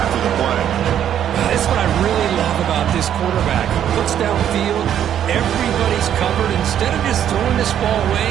after the play. That's what I really love about this quarterback. Looks downfield, everybody's covered. Instead of just throwing this ball away,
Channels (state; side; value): quieter; left; 10.0 dB